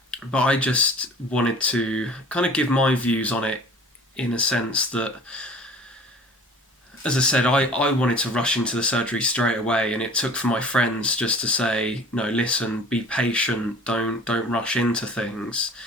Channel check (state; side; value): normal; both; correlation 0.46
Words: but I just wanted to kind of give my views on it in a sense that, as I said, I wanted to rush into the surgery straight away, and it took for my friends just to say, no, listen, be patient, don't rush into things.